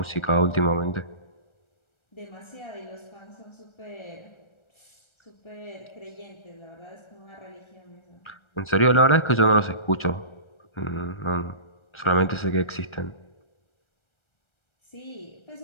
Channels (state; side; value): late; right; 1.3 ms